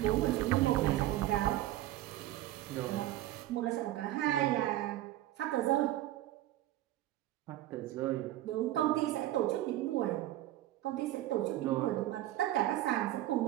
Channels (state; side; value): quieter; left; 14.9 dB